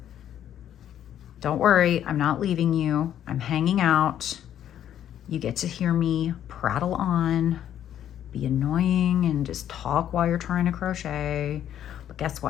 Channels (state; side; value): quieter; right; 10.6 dB